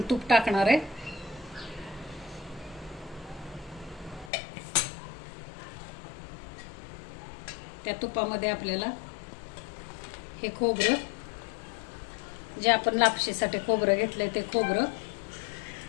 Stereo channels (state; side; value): drops out; right; at 4.3 s